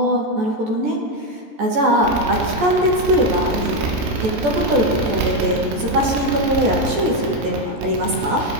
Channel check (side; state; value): left; late; 14 ms